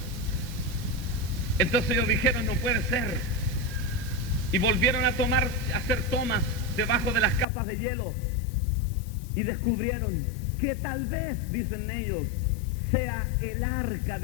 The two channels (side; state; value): right; drops out; at 7.5 s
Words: Entonces ellos dijeron, no puede ser. Y volvieron a hacer tomas debajo de las capas de hielo y descubrieron que tal vez, dicen ellos, sea el arca